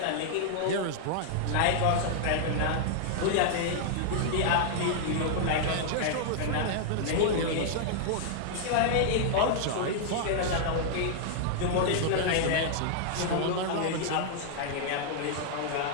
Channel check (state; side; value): different; both; correlation -0.01